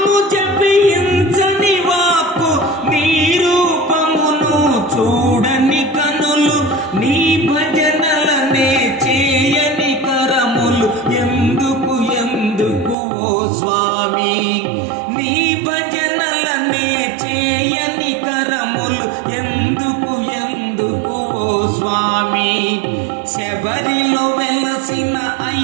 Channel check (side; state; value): left; drops out; at 13.0 s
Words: జపించని వాక్కు, నీ రూపమును చూడని కనులు. నీ భజనలనే చేయని కరములు, ఎందుకు ఎందుకు ఓ స్వామి? నీ భజనలనే చేయని కరములు, ఎందుకు ఎందుకు ఓ స్వామి? శబరిలో వెలసిన